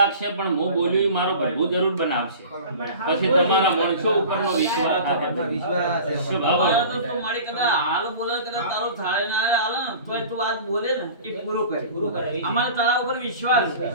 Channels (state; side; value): inverted; both; correlation -0.40